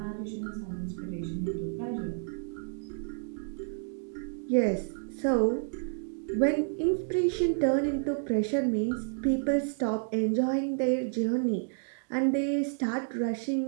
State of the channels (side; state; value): left; silent; digital silence